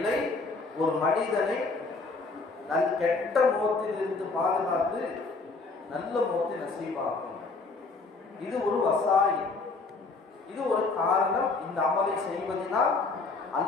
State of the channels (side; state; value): right; quieter; 3.9 dB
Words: ஒரு மனிதனை கெட்ட மௌத்தில் இருந்து பாதுகாத்து நல்ல மௌத்தை நசீபாகும். இது ஒரு வசாயி, இது ஒரு காரணம். இந்த அமலை செய்வதனால்